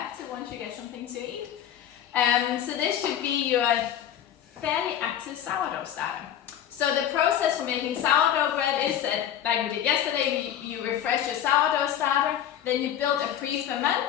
once you get something to eat. So this should be your fairly active sourdough starter. So the process for making sourdough bread is that, like we did yesterday, you refresh your sourdough starter, then you build a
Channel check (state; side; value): quieter; right; 10.4 dB